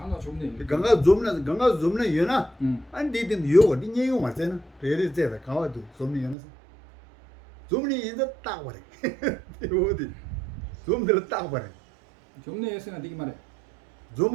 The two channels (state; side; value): drops out; left; at 6.4 s